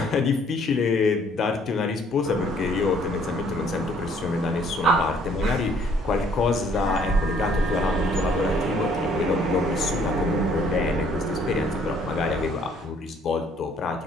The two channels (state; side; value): normal; both; correlation 0.62